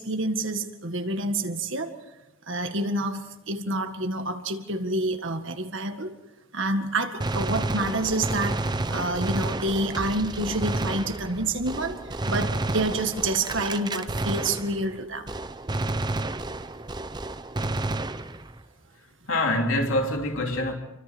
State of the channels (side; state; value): both; normal; correlation 0.36